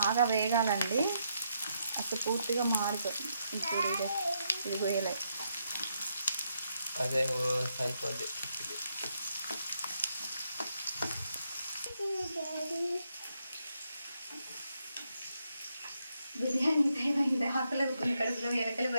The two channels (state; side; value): inverted; both; correlation -0.79